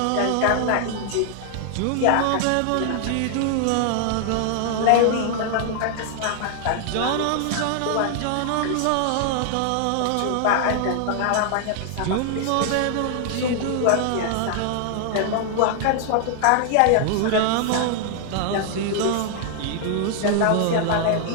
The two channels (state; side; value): different; both; correlation 0.00